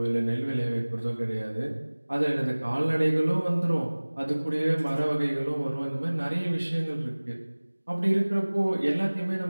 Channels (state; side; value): inverted; both; correlation -1.00